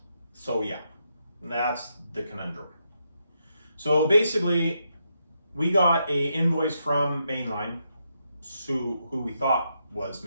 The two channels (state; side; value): inverted; both; correlation -0.81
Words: So yeah, that's the conundrum. So basically, we got a invoice from Mainline, who we thought was